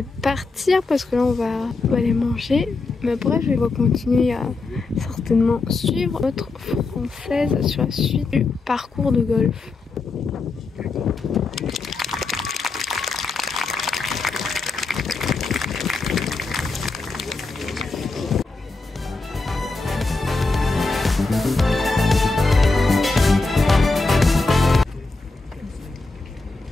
partir parce que là on va aller manger. Mais bref, je vais continuer à certainement suivre notre française sur la suite du parcours de golf.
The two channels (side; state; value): right; quieter; 3.7 dB